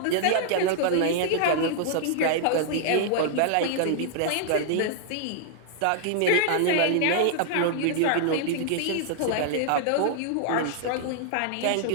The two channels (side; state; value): both; different; correlation -0.01